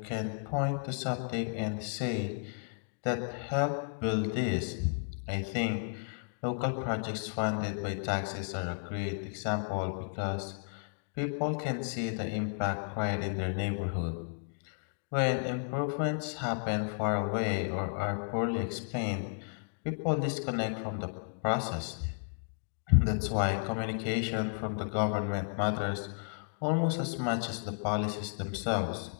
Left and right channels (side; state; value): right; silent; digital silence